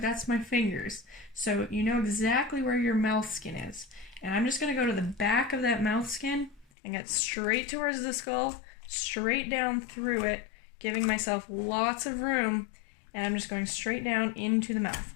my fingers. So you know exactly where your mouth skin is. And I'm just going to go to the back of that mouth skin and get straight towards the skull, straight down through it, giving myself lots of room. And I'm just going straight down into the mouth,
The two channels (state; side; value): drops out; right; at 6.7 s